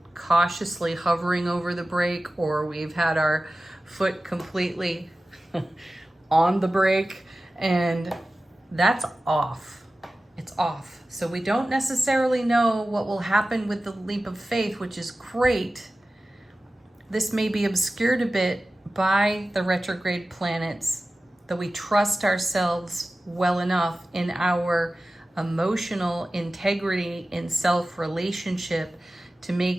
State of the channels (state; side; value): normal; both; correlation 0.95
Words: cautiously hovering over the brake, or we've had our foot completely on the brake, and that's off. It's off. So we don't necessarily know what will happen with the leap of faith, which is great. This may be obscured a bit by the retrograde planets, that we trust ourselves well enough in our emotional integrity in self-relationship to